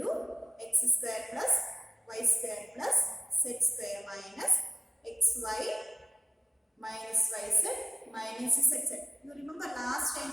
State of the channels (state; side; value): normal; both; correlation 0.96